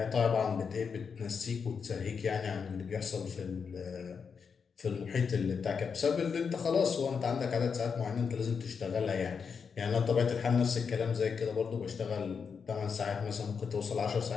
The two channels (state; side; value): quieter; right; 6.0 dB